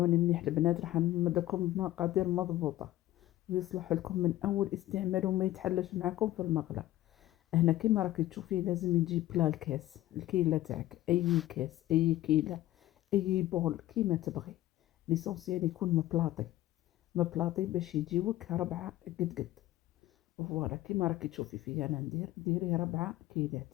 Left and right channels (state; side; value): quieter; right; 15.2 dB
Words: مليح البنات، راح نمدكم بمقادير مضبوطة ويصلح لكم من اول استعمال وما يتحلش معكم في المقله. هنا كيما راكي تشوفي لازم يجي بلا الكاس، الكيلة تاعك، اي كاس، اي كيلة، اي بول كيما تبغي. ليسونسيال يكون مبلاطي باش يجيوك 4 قد. فوالا كيما راكي تشوفي فيا انا ندير، ديري 4 كيلات.